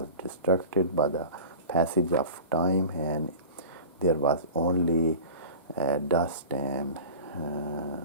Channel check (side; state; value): both; inverted; correlation -0.35